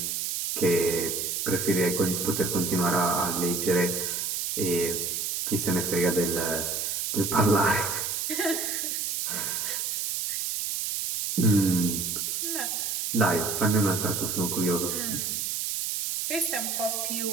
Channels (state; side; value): noise; right; hiss, 1 dB below the sound